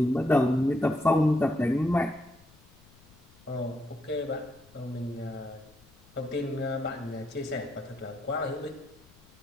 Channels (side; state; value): left; noise; rumble, 27 dB below the sound